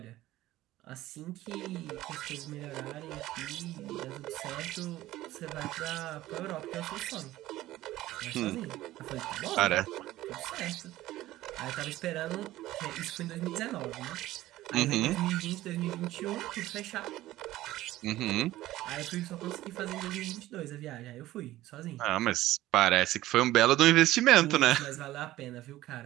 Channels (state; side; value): quieter; left; 15.7 dB